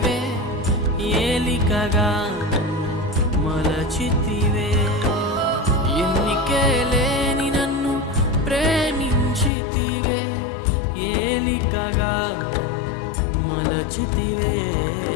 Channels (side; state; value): right; drops out; at 9.5 s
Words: ఏలికగా మలచితివే ఎన్నికే లేని నన్ను ప్రేమించితివే ఏలికగా మలచితివే